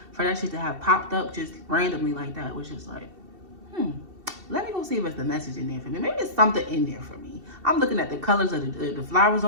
for that shit to have popped up just randomly like that was just like, let me go see if there's a message in there for me. Maybe there's something in there for me. I'm looking at the colors of the flowers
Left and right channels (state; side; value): late; left; 2.7 ms